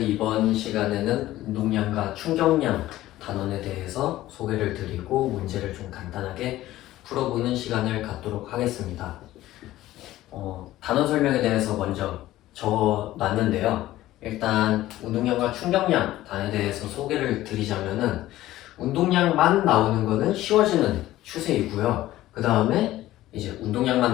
시간에는 운동량과 충격량 단원에 대해서 소개를 드리고 문제를 좀 간단하게 풀어보는 시간을 갖도록 하겠습니다. 단원 설명에 대해서 먼저 적어놨는데요. 일단 운동량과 충격량 단원에 대해서 소개를 드리자면은 운동량만 나오는 거는 쉬워지는 추세이고요. 그 다음에 이제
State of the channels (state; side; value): quieter; right; 15.4 dB